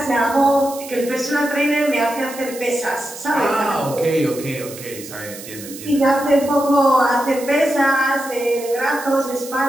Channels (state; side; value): noise; right; hiss, 14 dB below the sound